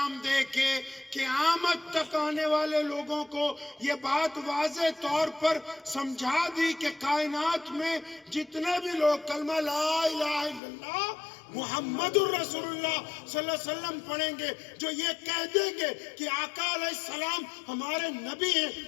دے کے قیامت تک آنے والے لوگوں کو یہ بات واضح طور پر سمجھا دی کہ کائنات میں جتنے بھی لوگ کلمہ لا الہ الا اللہ محمد الرسول اللہ صلی اللہ علیہ وسلم پڑھیں گے، جو یہ کہہ دیں گے کہ آقا علیہ السلام ہمارے نبی ہیں،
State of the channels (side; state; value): right; drops out; at 10.6 s